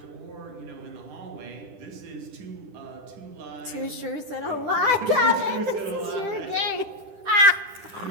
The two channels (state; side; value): late; left; 10 ms